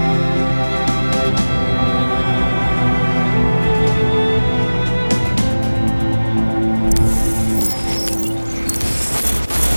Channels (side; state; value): both; inverted; correlation -1.00